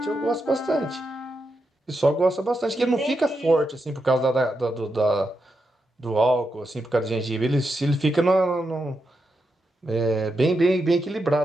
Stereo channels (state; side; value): normal; both; correlation 0.85